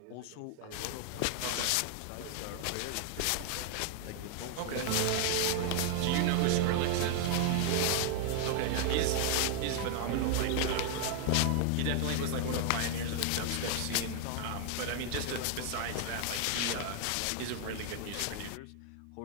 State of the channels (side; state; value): both; different; correlation 0.00